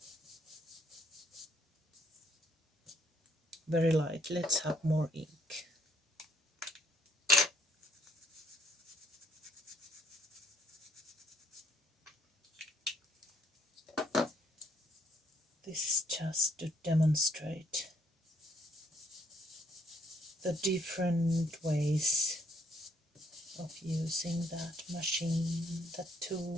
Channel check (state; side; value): normal; both; correlation 0.68